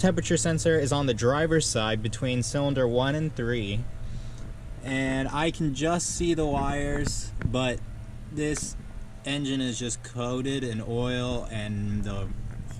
temperature sensor is on the driver's side between cylinder 1 and 3. And I can just see the wires, but this engine is just coated in oil and the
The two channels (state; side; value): identical; both; correlation 1.00